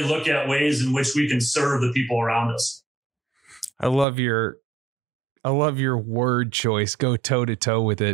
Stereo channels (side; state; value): left; drops out; at 4.0 s